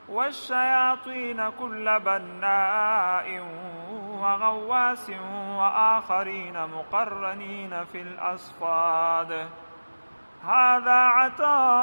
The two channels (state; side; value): inverted; both; correlation -1.00